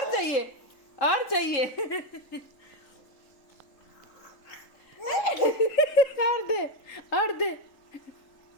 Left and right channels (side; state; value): right; late; 3.6 ms